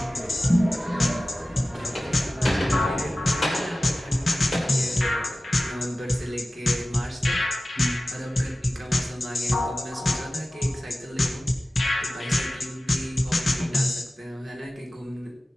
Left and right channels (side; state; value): both; normal; correlation 0.96